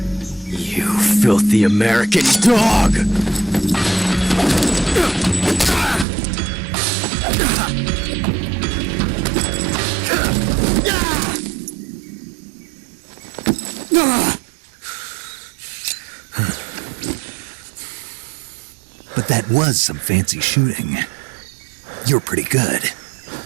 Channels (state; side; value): drops out; left; at 6.1 s